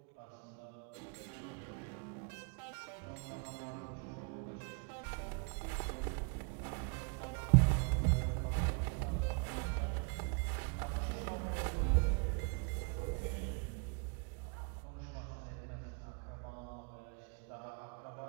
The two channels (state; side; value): quieter; left; 34.8 dB